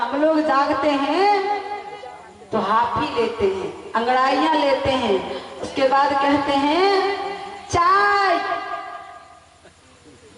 लोग जागते हैं तो हाफी लेते हैं, अंगड़ाइयां लेते हैं, उसके बाद कहते हैं चाय,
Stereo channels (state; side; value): identical; both; correlation 1.00